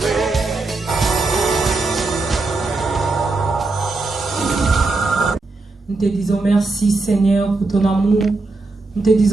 Nous te disons merci Seigneur pour ton amour. Nous te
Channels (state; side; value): quieter; left; 3.4 dB